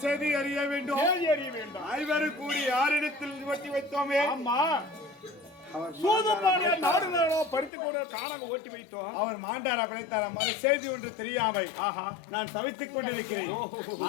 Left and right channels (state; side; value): drops out; right; at 7.7 s